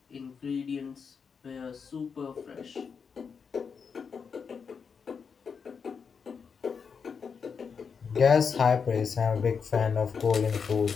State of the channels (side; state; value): right; quieter; 6.0 dB